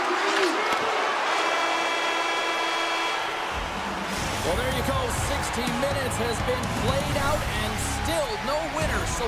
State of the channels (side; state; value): both; identical; correlation 1.00